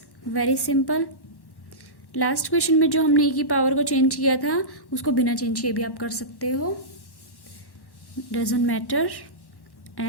Very simple. Last question में जो हमने e की power को change किया था उसको बिना change किए भी आप कर सकते हो, doesn't matter.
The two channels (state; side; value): late; right; 1.1 ms